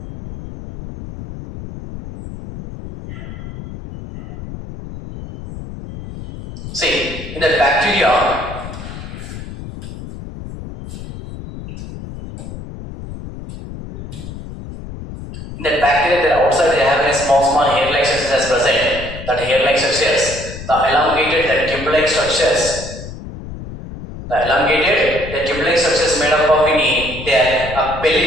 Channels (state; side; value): noise; left; rumble, 11 dB below the sound